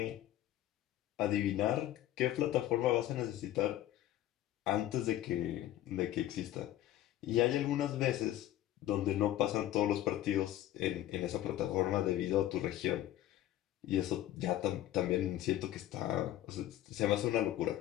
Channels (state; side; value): quieter; right; 13.5 dB